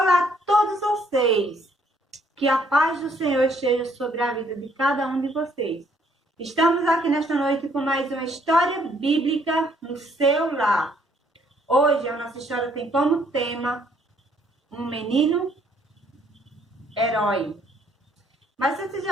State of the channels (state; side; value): normal; both; correlation 0.66